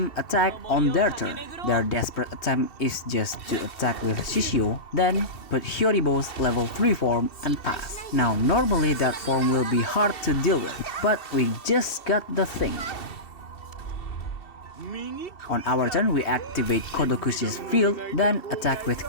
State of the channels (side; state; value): right; late; 2.7 ms